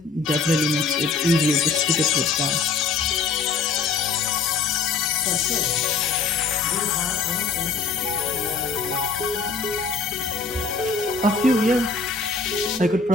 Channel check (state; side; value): quieter; right; 4.5 dB